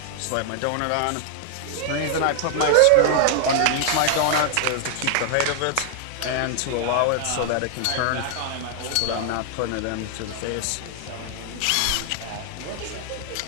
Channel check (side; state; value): both; different; correlation 0.00